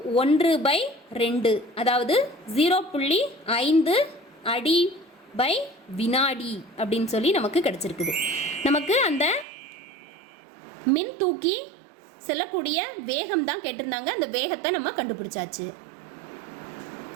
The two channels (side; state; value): left; drops out; at 9.5 s